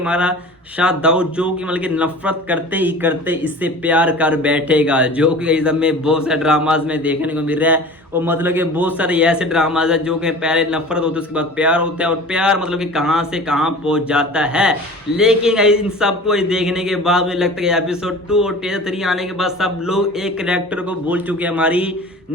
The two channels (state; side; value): normal; both; correlation 0.40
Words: शाह दाऊद जो कि मतलब कि नफरत करते ही करते इससे प्यार कर बैठेगा, जो कि गाइज हमें बहुत सारे ड्रामाज में देखने को मिल रहा है। और मतलब कि बहुत सारे ऐसे ड्रामाज है जो कि पहले नफरत होती है उसके बाद प्यार होता है और प्यार मतलब कि कहां से कहां पहुंच जाता है। लेकिन इन सबको देखने के बाद मुझे लगता है एपिसोड 2 और टीजर 3 आने के बाद सब लोग एक कैरेक्टर को भूल चुके हैं, हमारी